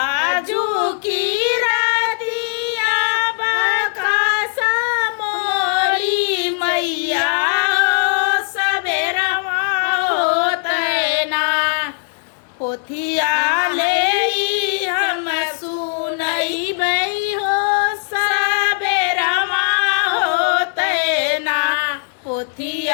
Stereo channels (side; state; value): right; silent; digital silence